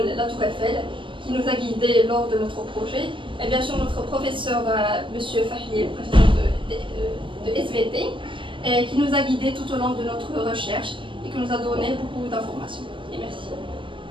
La Tour Eiffel qui nous a guidés lors de notre projet et bien sûr notre professeur M. Fahli, professeur de SVT, qui nous a guidés tout au long de notre recherche et qui nous a donné beaucoup d'informations.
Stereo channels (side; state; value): left; late; 0.25 ms